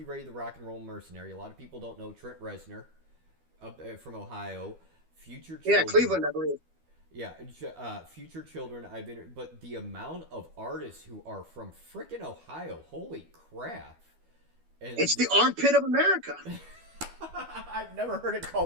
Ray, the rock and roll mercenary. A lot of people don't know Trent Reznor, from Ohio. Future Children. Yeah, Cleveland, I believe. Yeah, Future Children. But the amount of artists who are from frickin' Ohio, holy crap! And it's the armpit of America. I've never heard it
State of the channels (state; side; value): late; left; 12 ms